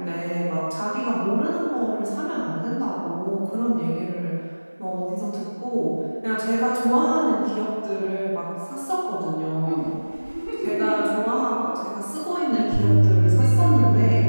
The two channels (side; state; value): both; inverted; correlation -1.00